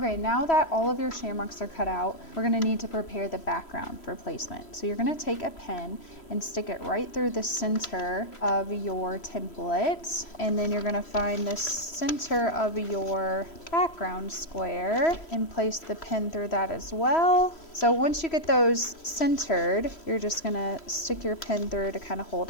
now that all of your shamrocks are cut out, we're gonna need to prepare the background for placement. So you're gonna take a pen and stick it right through the center of your template. And then you're gonna find the center of your background square and place the pen through that as well. So once you get those centered, you're just gonna stick your pen through to kind of hold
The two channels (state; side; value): late; right; 3.1 ms